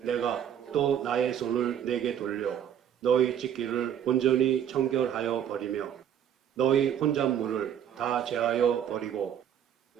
또 나의 손을 내게 돌려 너희 짓기를 온전히 청결하여 버리며 너희 혼잣물을 다 제하여 버리고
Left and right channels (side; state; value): left; quieter; 9.4 dB